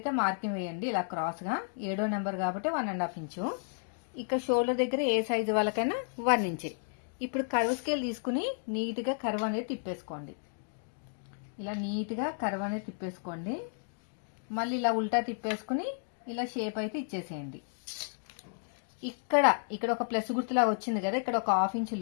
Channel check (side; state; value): right; silent; digital silence